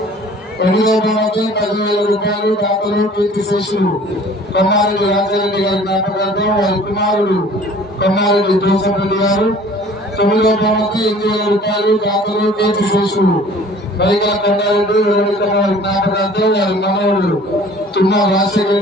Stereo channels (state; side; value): normal; both; correlation 0.49